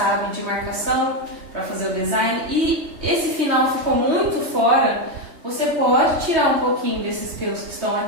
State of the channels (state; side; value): late; left; 3.1 ms